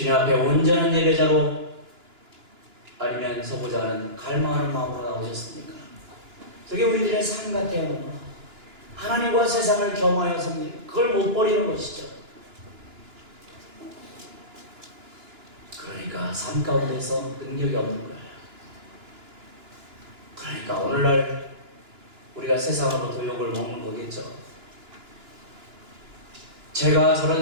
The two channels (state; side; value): late; left; 2.9 ms